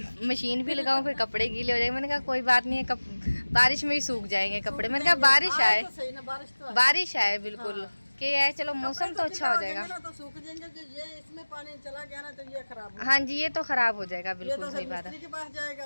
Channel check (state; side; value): inverted; both; correlation -1.00